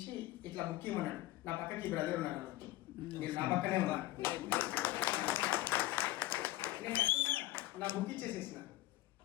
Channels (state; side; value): quieter; right; 17.0 dB